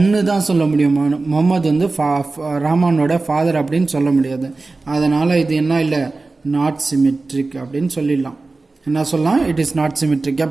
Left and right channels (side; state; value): left; quieter; 3.5 dB